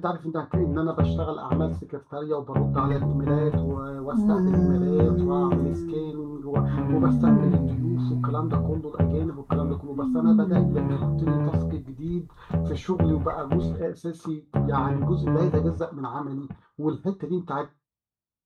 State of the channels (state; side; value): identical; both; correlation 1.00